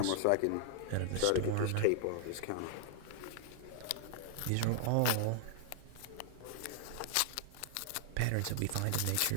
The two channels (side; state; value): both; different; correlation -0.01